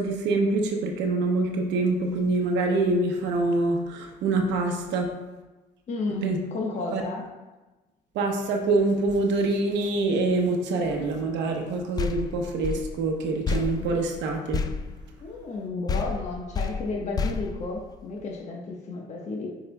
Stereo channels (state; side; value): normal; both; correlation 0.48